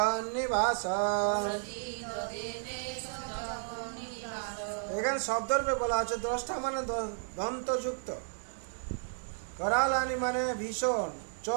এখানে শব্দরূপে বলা আছে দ্রষ্টা মানে দন্তযুক্ত, करालानी মানে ভীষণ, চ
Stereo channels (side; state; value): left; silent; digital silence